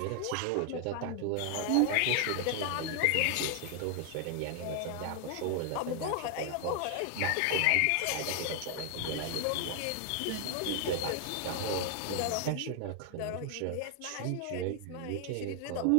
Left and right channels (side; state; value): both; different; correlation 0.00